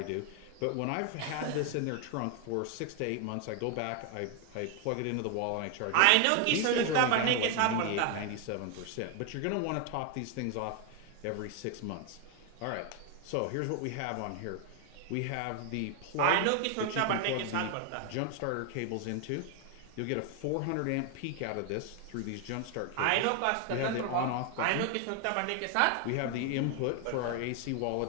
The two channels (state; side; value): different; both; correlation 0.01